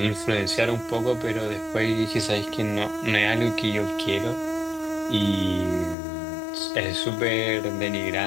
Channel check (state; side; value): drops out; right; at 6.0 s